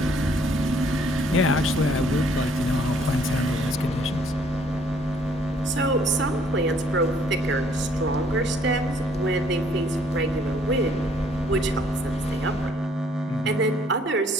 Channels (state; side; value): normal; both; correlation 0.62